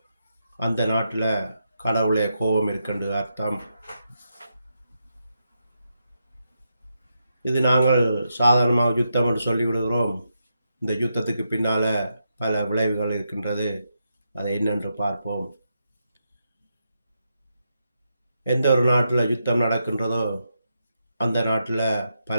அந்த நாட்டில் கடவுளுடைய கோபம் இருக்குன்னு அர்த்தம். இது நாங்கள் சாதாரணமாக யுத்தம் என்று சொல்லிவிடுகிறோம். இந்த யுத்தத்துக்கு பின்னால் பல விளைவுகள் இருக்கின்றது. அதை என்னென்று பார்ப்போம். எந்த ஒரு நாட்டில் யுத்தம் நடக்கின்றதோ அந்த நாட்டில்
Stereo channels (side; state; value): both; inverted; correlation -0.84